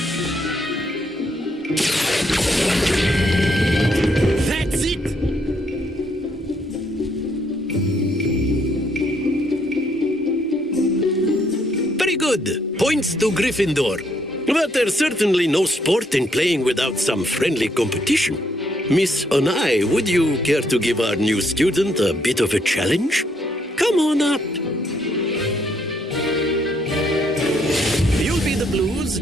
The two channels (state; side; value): normal; both; correlation 0.72